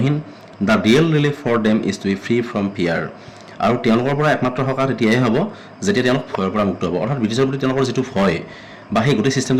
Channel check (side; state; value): both; identical; correlation 1.00